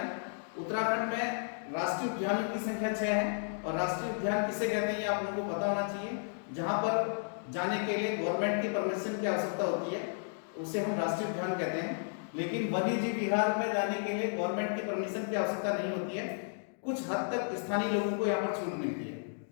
उत्तराखंड में राष्ट्रीय उद्यानों की संख्या 6 है और राष्ट्रीय उद्यान किसे कहते हैं ये आप लोगों को पता होना चाहिए। जहां पर जाने के लिए गवर्नमेंट की परमिशन की आवश्यकता होती है उसे हम राष्ट्रीय उद्यान कहते हैं, लेकिन वन्यजीव विहार में जाने के लिए गवर्नमेंट की परमिशन की आवश्यकता नहीं होती है। कुछ हद तक स्थानीय लोगों को यहाँ पर छूट मिलती है।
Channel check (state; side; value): silent; right; digital silence